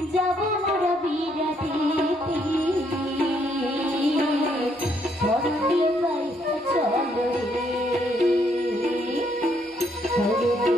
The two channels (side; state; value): both; normal; correlation 0.71